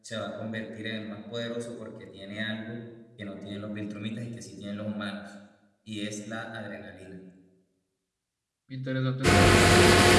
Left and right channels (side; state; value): both; identical; correlation 1.00